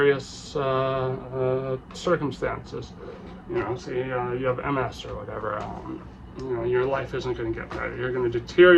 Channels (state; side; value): identical; both; correlation 1.00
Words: circumstances. You know, say you have MS or whatever, you know, your life isn't going to get better. You're going to